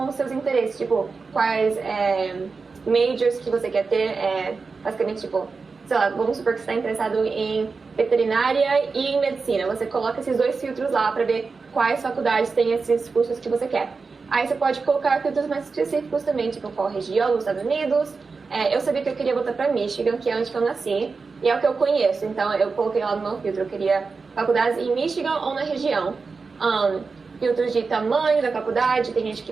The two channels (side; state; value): left; quieter; 4.5 dB